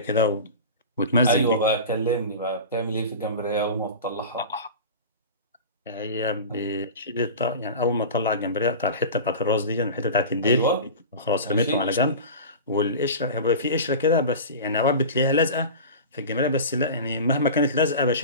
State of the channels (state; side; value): inverted; both; correlation -0.32